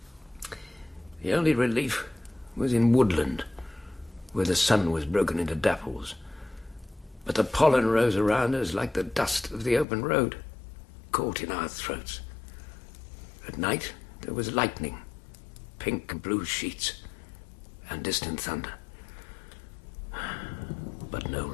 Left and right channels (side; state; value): right; drops out; at 9.9 s